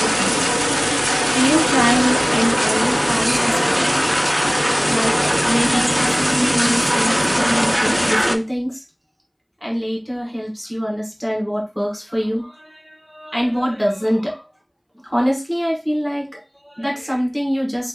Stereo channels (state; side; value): identical; both; correlation 1.00